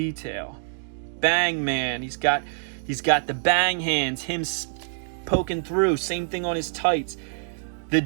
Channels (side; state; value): left; silent; digital silence